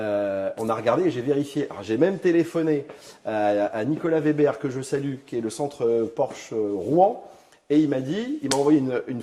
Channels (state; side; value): identical; both; correlation 1.00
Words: a regardé et j'ai vérifié. Alors, j'ai même téléphoné à Nicolas Weber, que je salue, qui est le centre Porsche Rouen, et il m'a envoyé une